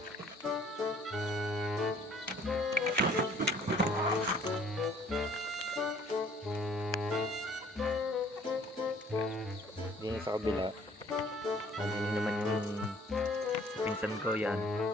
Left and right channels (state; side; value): normal; both; correlation 0.56